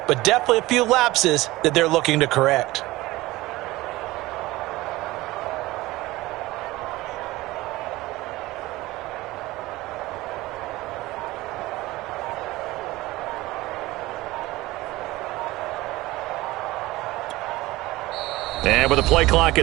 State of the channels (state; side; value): quieter; left; 19.0 dB